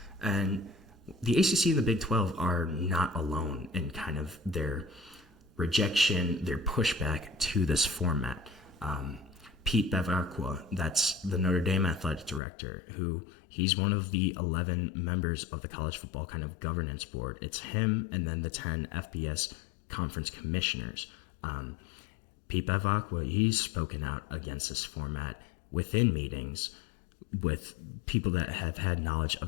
And the ACC and the Big 12 are not alone in kind of their rejection, their pushback to this format. Pete Bevacqua, that's the Notre Dame athletic director, who he's one of the 11 members of the college football kind of governance board. It's him and then the 10 FBS conference commissioners. Pete Bevacqua, he's spoken out against this format within meetings with people that have had knowledge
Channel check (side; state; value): right; drops out; at 12.4 s